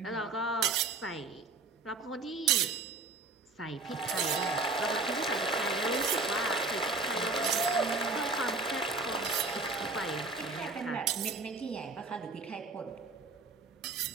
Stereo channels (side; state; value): left; quieter; 3.6 dB